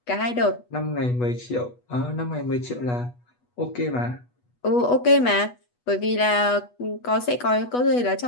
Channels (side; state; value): right; late; 8.2 ms